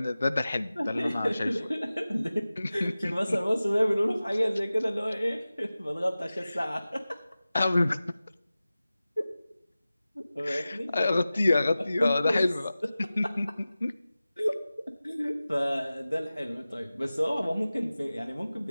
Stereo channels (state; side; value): inverted; both; correlation -0.96